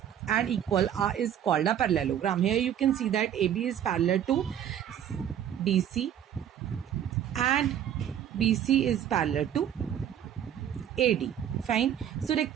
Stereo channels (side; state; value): left; quieter; 10.0 dB